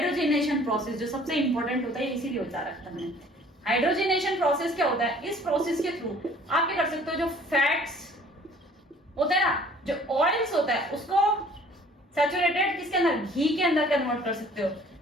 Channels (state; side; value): normal; both; correlation 0.54